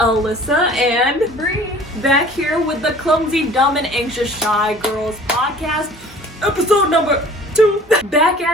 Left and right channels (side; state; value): both; normal; correlation 0.48